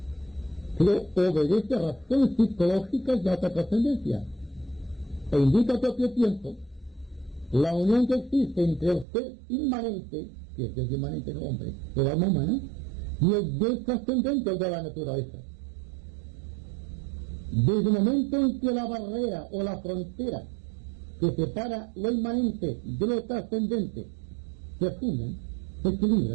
Pero obedece a razones psicológicas de alta trascendencia e indica al propio tiempo la unión que existe entre el ser inmanente, que es el inmanente del hombre, el alma humana, y el Dios trascendente de la naturaleza. Desde el momento en que la barrera o la frontera que separa lo inmanente de lo trascendente se funden, se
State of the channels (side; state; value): left; drops out; at 9.1 s